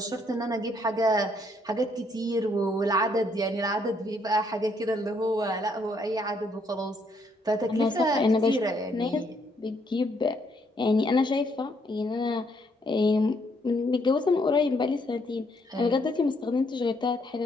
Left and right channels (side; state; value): both; normal; correlation 0.71